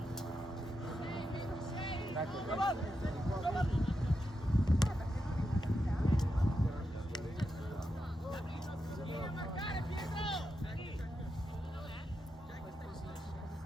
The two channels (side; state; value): both; normal; correlation 0.86